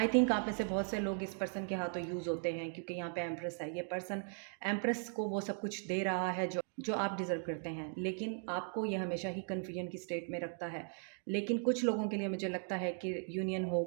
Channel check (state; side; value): silent; left; 53 dB below the other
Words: थिंक आप में से बहुत से लोग इस पर्सन के हाथों यूज़ होते हैं, क्योंकि यहाँ पे एम्प्रेस है। ये पर्सन एम्प्रेस को वो सब कुछ दे रहा है जो आप डिज़र्व करते हैं, लेकिन आपको ये हमेशा ही कन्फ्यूजन की स्टेट में रखता है। लेकिन कुछ लोगों के लिए मुझे लगता है कि यूनियन